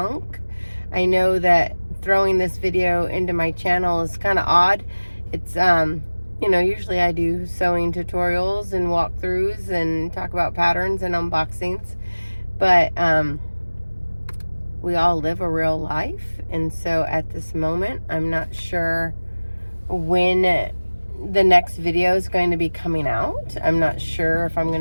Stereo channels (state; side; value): inverted; both; correlation -1.00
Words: I know that throwing this video into my channel is kind of odd. It's usually I do sewing tutorials and walkthroughs and talk about patterns and unboxings, but we all live a real life, and so at this moment I'm not sure when the next video is going to be coming out. I'm not sure if I'm